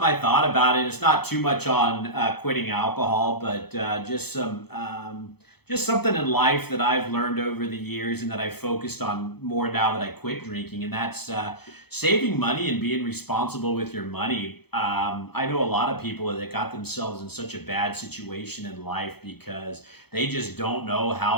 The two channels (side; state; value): right; late; 0.97 ms